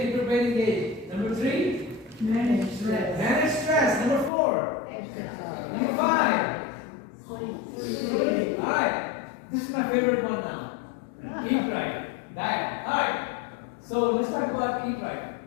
keep your brain engaged. Number 3? Manage stress. Manage stress. Number 4? Number 5? Alright, this is my favorite one now. Eat right. Diet. Alright. So let's talk about eat right.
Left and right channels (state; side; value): drops out; right; at 4.3 s